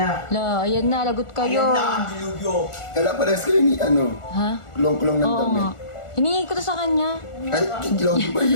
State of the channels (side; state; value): right; late; 1.4 ms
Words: La, ayan na, lagot kayo. kala pa rin kayo ni Ha? kulong-kulong ng Oo damit. nga. Hiningi ko to sa kanya. Ay, Louie ba